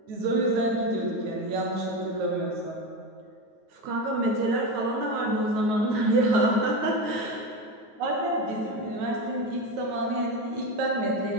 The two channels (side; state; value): left; late; 9.3 ms